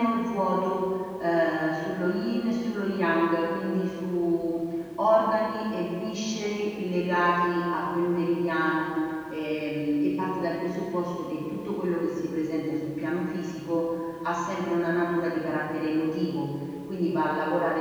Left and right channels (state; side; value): identical; both; correlation 1.00